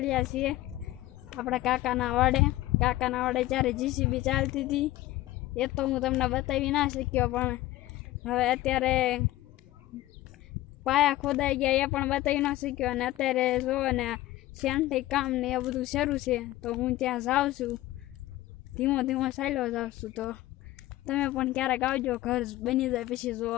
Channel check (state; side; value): quieter; right; 16.2 dB